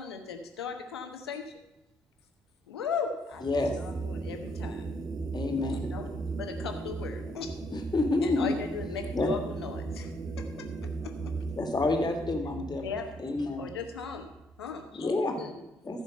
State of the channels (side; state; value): both; normal; correlation 0.71